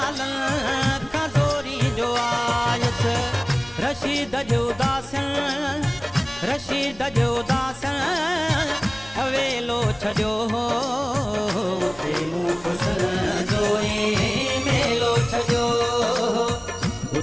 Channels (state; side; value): noise; left; hum, 23 dB below the sound